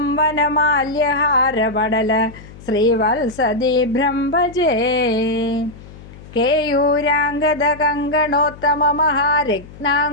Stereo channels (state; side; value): noise; left; hum, 18 dB below the sound